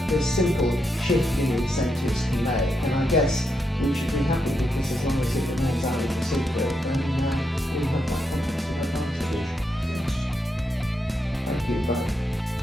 this simple shift in incentives can make. And I guess we should be happy because as long as it remains out of the secret, then we have that competitive advantage. Thank you both.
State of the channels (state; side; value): normal; both; correlation 0.82